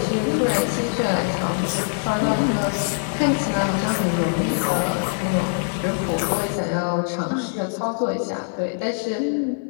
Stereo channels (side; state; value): right; silent; digital silence